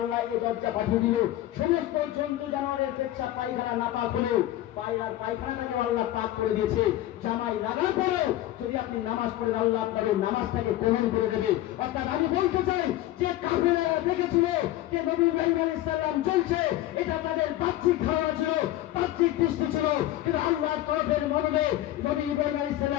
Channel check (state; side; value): quieter; right; 14.6 dB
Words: এই দরজা পাঠিয়ে দিল। সমস্ত জন্তু জানোয়ারের পেচ্ছাপ পায়খানা না পাক হলেও পায়রার পায়খানাটাকে আল্লাহ পাক করে দিয়েছে। জামাই লাগার পরেও যদি আপনি নামাজ পড়েন, আল্লাহ আপনাদের নামাজটাকে কবুল করে দেবে। অর্থাৎ আমি বলতে চাই যে কাফেররা দেখেছিল যে নবী ইব্রাহিম আলাইহিস সালাম চলছে, এটা তাদের বাহ্যিক ধারণা ছিল, বাহ্যিক দৃষ্টি ছিল, কিন্তু আল্লাহর তরফের মনোবে নবী ইব্রাহিম আলাইহিস